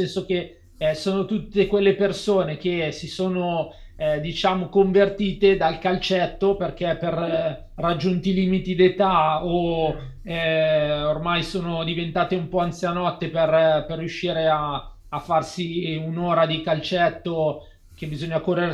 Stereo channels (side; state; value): both; identical; correlation 1.00